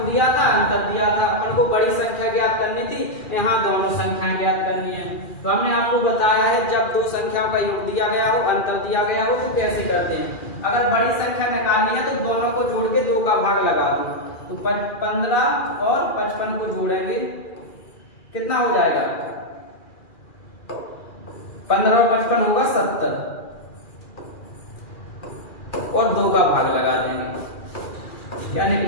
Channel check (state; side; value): late; right; 2.4 ms